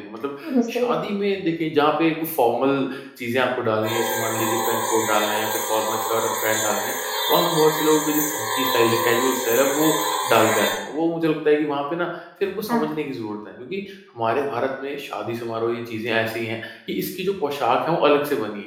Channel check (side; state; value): both; identical; correlation 1.00